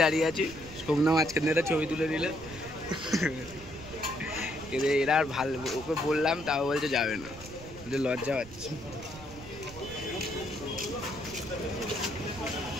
দাঁড়িয়ে আছে, সোমনা মাঝখানে একটা ছবি তুলে নিল। এরা আর ভালো, ওকে বললাম তাও বলছে যাবে না, লজ্জা পাচ্ছে।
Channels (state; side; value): noise; right; rumble, 15 dB below the sound